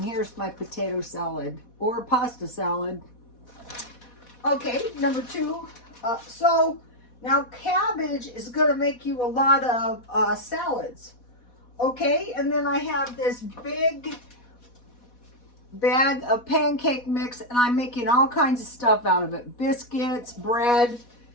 here's my potato salad or pasta salad. Okay, number 2. So now cabbage is going to make you a lot of salads. Okay, and then I have this big bag of pancake mix, and I'm making all kinds of stuff out of it. Biscuits, bread,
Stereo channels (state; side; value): late; right; 4.1 ms